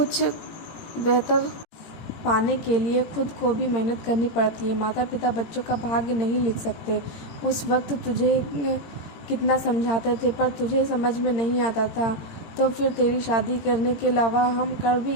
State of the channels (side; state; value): right; late; 18 ms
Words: बेहतर पाने के लिए खुद को भी मेहनत करनी पड़ती है। माता पिता बच्चों का भाग्य नहीं लिख सकते। उस वक्त तुझे कितना समझाते थे पर तुझे समझ में नहीं आता था, तो फिर तेरी शादी करने के अलावा हम कर भी